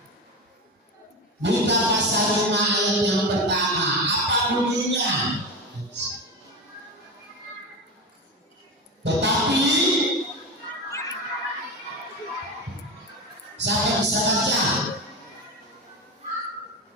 Mika pasal 5 ayat yang pertama. Apa bunyinya? Tetapi siapa bisa baca?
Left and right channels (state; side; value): normal; both; correlation 0.22